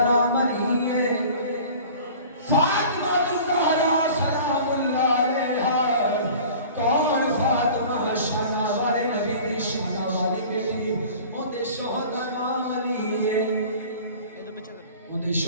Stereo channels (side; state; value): both; inverted; correlation -0.43